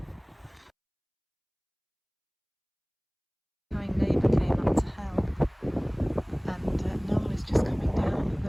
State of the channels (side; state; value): both; identical; correlation 1.00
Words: My neighbour came up to help, and Noel is just coming down